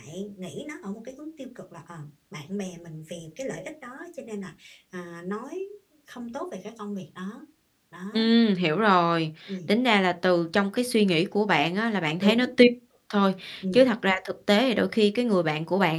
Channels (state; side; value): identical; both; correlation 1.00